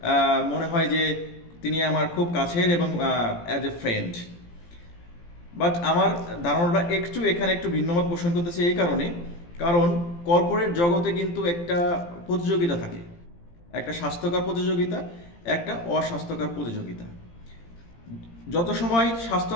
মনে হয় যে তিনি আমার খুব কাছের এবং অ্যাজ এ ফ্রেন্ড। বাট আমার ধারণাটা এখানে একটু ভিন্নমত পোষণ করতেছে এই কারণে, কারণ কর্পোরেট জগতে কিন্তু একটা প্রতিযোগিতা থাকে, একটা স্বাস্থ্যকর প্রতিযোগিতা, একটা অস্বাস্থ্যকর প্রতিযোগিতা। যত সময়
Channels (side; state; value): right; late; 17 ms